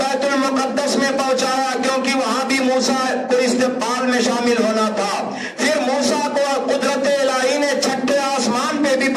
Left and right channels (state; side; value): identical; both; correlation 1.00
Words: بیت المقدس میں پہنچایا، کیونکہ وہاں بھی موسیٰ کو استقبال میں شامل ہونا تھا۔ پھر موسیٰ کو قدرت الہی نے چھٹے آسمان پہ بھی